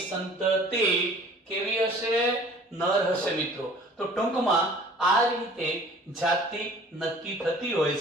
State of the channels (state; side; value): normal; both; correlation 0.49